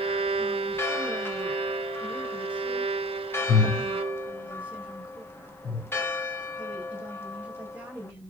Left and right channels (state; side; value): normal; both; correlation 0.39